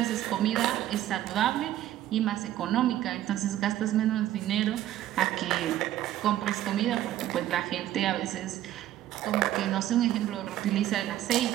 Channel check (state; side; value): quieter; left; 13.1 dB